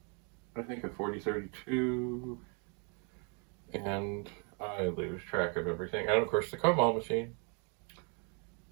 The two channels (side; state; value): left; quieter; 36.8 dB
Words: I think a 4032, and I lose track of everything, and of course the Commodore machine.